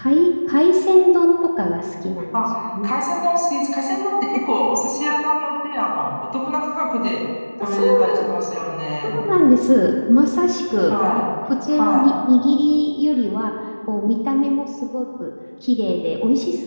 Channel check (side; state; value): both; inverted; correlation -1.00